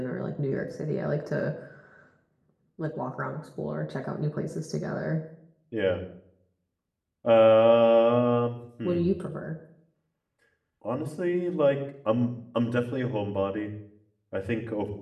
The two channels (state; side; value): identical; both; correlation 1.00